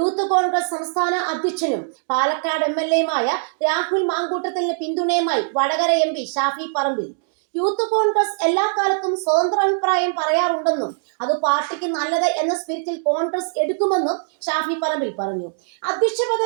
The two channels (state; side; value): silent; left; digital silence